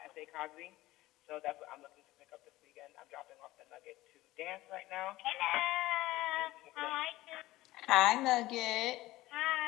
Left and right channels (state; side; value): quieter; right; 17.5 dB